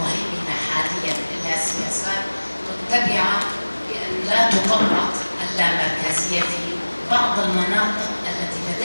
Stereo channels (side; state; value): both; inverted; correlation -1.00